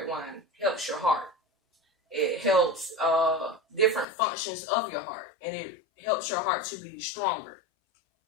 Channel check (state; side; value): drops out; right; at 4.0 s